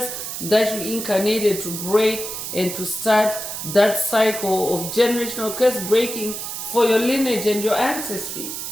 that you incarnated to break and to start that cycle of generational curse breaking for your lineage and your ancestry.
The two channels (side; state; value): right; noise; hiss, 6 dB below the sound